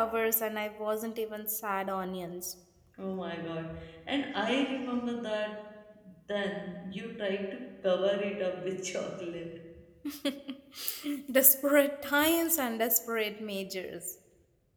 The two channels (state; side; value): identical; both; correlation 1.00